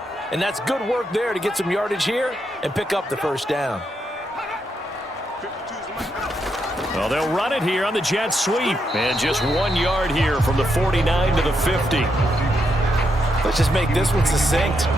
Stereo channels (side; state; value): both; normal; correlation 0.80